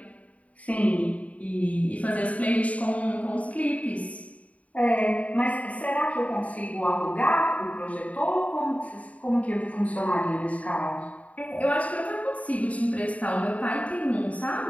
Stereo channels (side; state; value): right; late; 0.068 ms